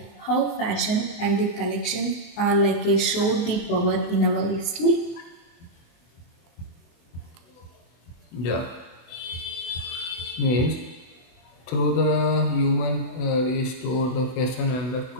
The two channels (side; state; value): right; late; 23 ms